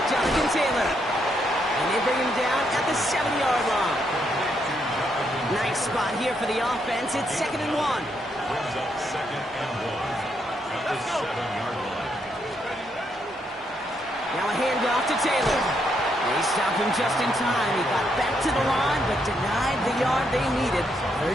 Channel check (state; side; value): normal; both; correlation 0.77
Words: Jonathan Taylor. And they bring him down at the 7-yard line. Nice spot here for the offense. It's 2nd and 1. Brings up 2nd and 1 at the 7-yard line. Now a handoff to Taylor. They stopped him just in time. He got back to the line, but denied the yard they needed.